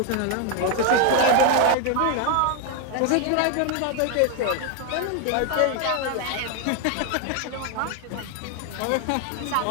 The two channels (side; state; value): both; different; correlation 0.01